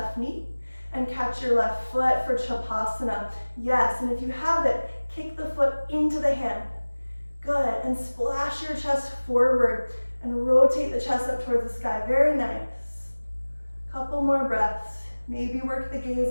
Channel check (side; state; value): both; inverted; correlation -1.00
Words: knee and catch your left foot for Chapasana. Yes, and if you have it, kick the foot into the hand. Good, and splash your chest forward and rotate the chest up towards the sky. Very nice. Couple more breaths. Maybe work the gaze